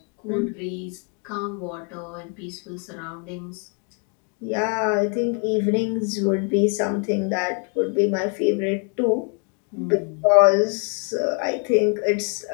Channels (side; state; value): right; quieter; 38.8 dB